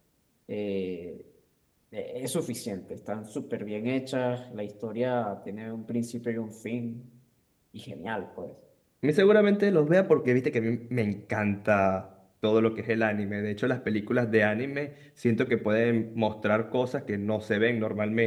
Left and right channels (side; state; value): both; identical; correlation 1.00